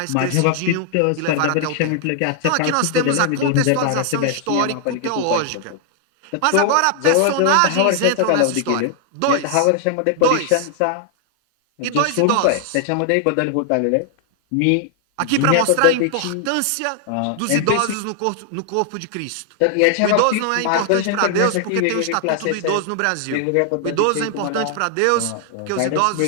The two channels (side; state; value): both; different; correlation 0.00